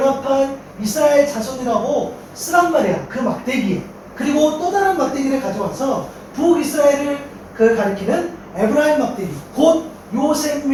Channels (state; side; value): identical; both; correlation 1.00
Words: 이스라엘 자손이라고 쓰란 말이야. 그 막대기에. 그리고 또 다른 막대기를 가져와서 북이스라엘을 가리키는 에브라임 막대기, 곧 요셉